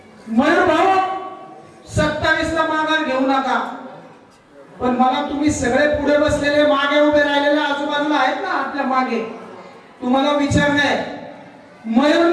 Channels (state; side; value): identical; both; correlation 1.00